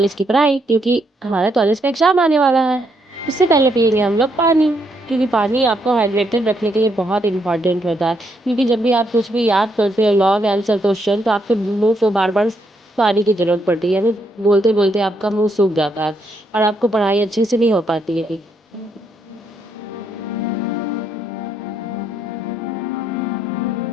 की पढ़ाई, क्योंकि हमारे कॉलेज का एग्जाम आने वाला है। उससे पहले पियेंगे हम लोग पानी, क्योंकि पानी आपको हाइड्रेटेड रखने के लिए बहुत इंपॉर्टेंट होता है। क्योंकि जब भी आप कुछ भी याद करते हो, लॉन्ग आंसर क्वेश्चन, तो आपके मुंह को बार बार पानी की जरूरत पड़ती है, यानी बोलते बोलते आपका मुंह सूख जाता है और आपको पढ़ाई अच्छे से नहीं हो पाती है।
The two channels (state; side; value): normal; both; correlation 0.76